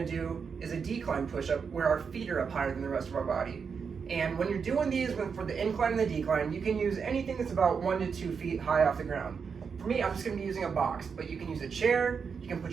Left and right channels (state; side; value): quieter; left; 6.0 dB